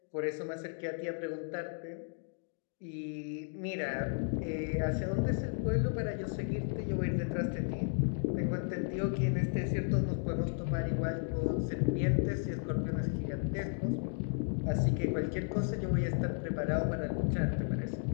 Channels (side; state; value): right; silent; 55 dB below the other